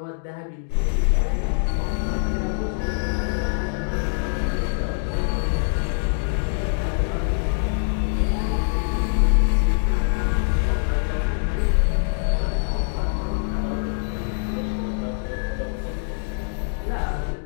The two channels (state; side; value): silent; right; digital silence